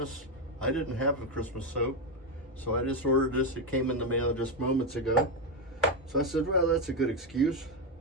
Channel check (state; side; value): normal; both; correlation 0.08